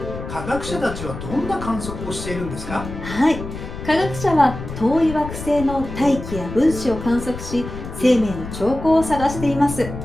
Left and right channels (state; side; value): noise; left; rumble, 9 dB below the sound